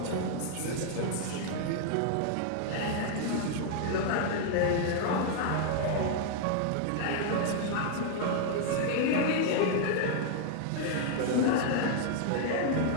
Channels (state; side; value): different; both; correlation 0.00